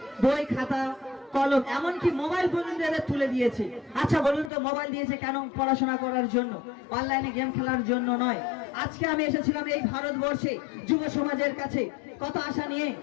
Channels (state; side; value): drops out; right; at 4.5 s